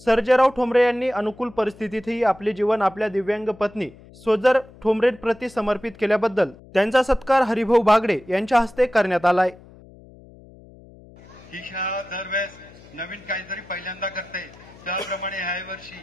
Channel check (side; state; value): left; noise; hum, 22 dB below the sound